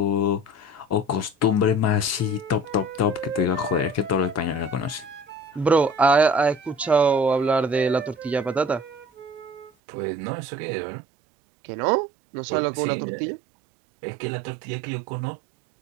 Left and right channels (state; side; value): drops out; left; at 9.7 s